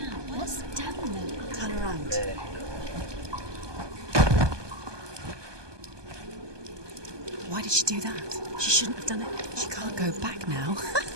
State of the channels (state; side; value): late; left; 1.2 ms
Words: What's down there? Turn around. Why did she do that? She shouldn't have done it. She can't go back now.